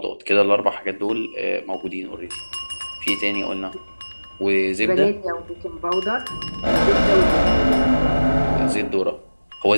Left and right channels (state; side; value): inverted; both; correlation -1.00